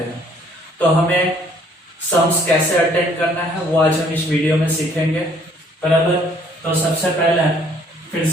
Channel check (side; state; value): both; normal; correlation 0.61